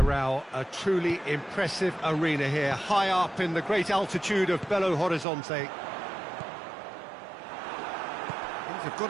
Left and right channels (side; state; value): left; drops out; at 5.2 s